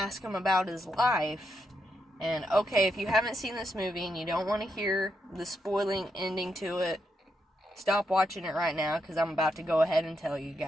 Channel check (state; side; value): normal; both; correlation 0.82